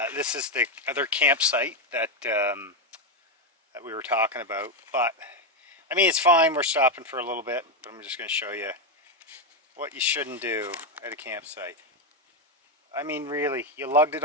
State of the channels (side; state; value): both; normal; correlation 0.06